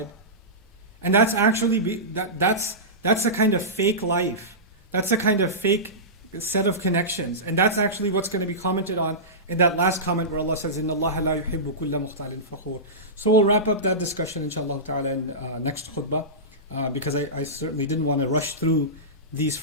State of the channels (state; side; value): normal; both; correlation -0.18